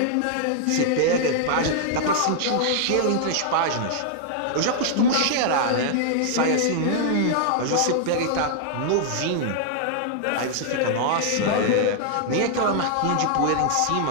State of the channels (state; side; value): different; both; correlation -0.01